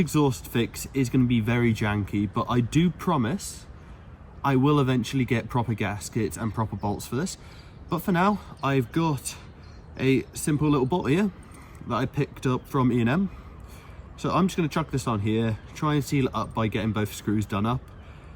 fix is going to be very janky, but I do promise I will eventually get proper gaskets and proper bolts for this. But for now, I've got a simple little bolt here that I picked up from E&M. So I'm just going to chuck this on here, try and seal it up by getting both screws done up,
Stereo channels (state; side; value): identical; both; correlation 1.00